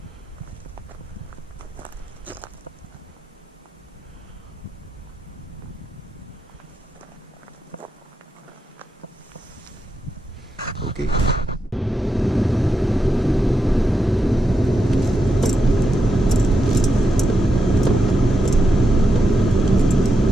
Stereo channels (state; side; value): normal; both; correlation 0.86